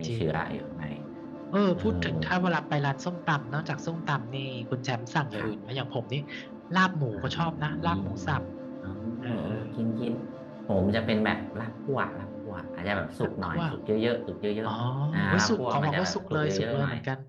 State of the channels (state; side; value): identical; both; correlation 1.00